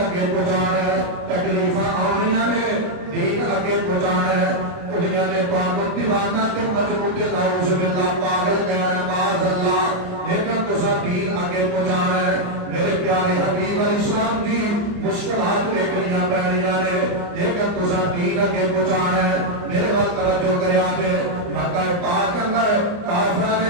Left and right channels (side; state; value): left; late; 29 ms